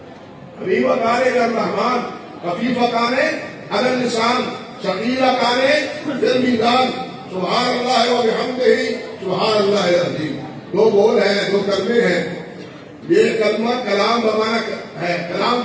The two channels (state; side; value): identical; both; correlation 1.00